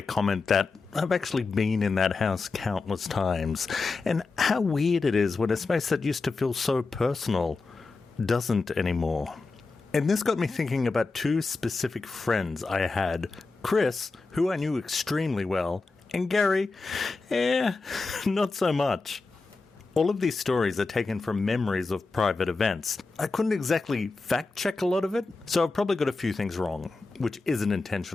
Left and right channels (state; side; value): quieter; right; 3.9 dB